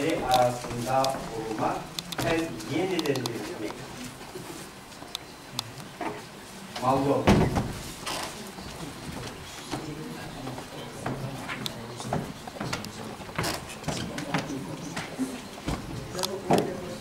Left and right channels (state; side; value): identical; both; correlation 1.00